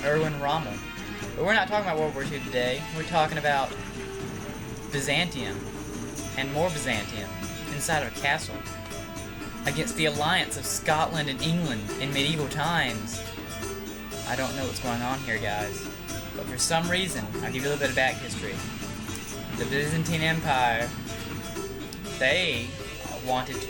Erwin Rommel. But we're not talking about World War II today. We're talking about Byzantium. And more Byzantium inside of a castle against the alliance of Scotland and England in medieval times. I don't know what's going on here, guys, but for some reason, I'll give you a little bit of back history. The Byzantine Empire, they wanted to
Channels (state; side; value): identical; both; correlation 1.00